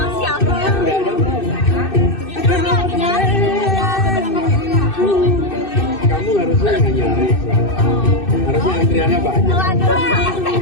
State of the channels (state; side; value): late; right; 2.6 ms